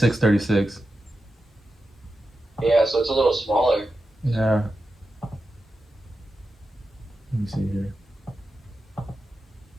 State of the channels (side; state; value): both; normal; correlation 0.90